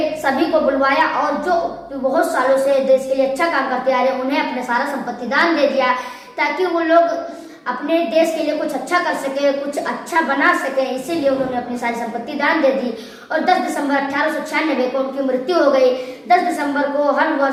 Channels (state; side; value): identical; both; correlation 1.00